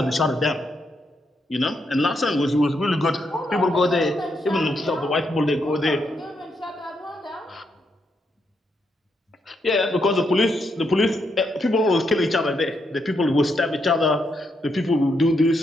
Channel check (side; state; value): both; normal; correlation 0.79